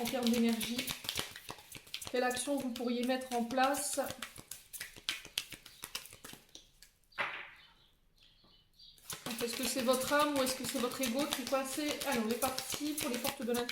termes d'énergie. Quelle action vous pourriez mettre en place? Est-ce que c'est votre âme ou est-ce que c'est votre ego qui est coincé? Allez, on est parti pour les portes de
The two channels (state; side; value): identical; both; correlation 1.00